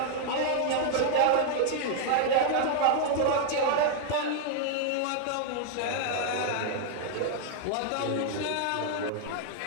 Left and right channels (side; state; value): both; different; correlation -0.01